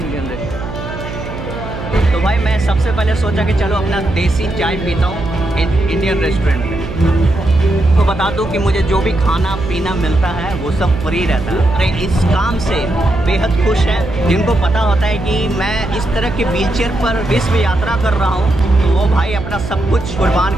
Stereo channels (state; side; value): noise; right; hum, 9 dB below the sound